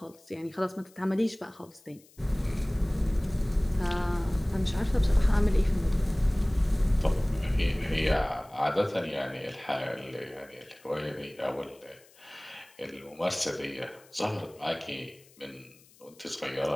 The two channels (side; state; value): left; noise; hiss, 27 dB below the sound